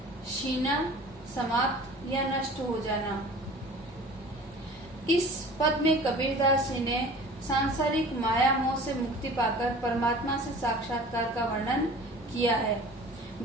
शीना समाप्त या नष्ट हो जाना। इस पद में कबीरदास जी ने सांसारिक माया मोह से मुक्ति पाकर परमात्मा से साक्षात्कार का वर्णन किया है।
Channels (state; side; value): normal; both; correlation 0.43